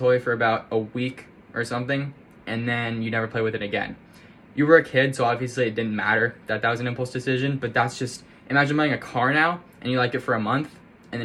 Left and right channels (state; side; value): identical; both; correlation 1.00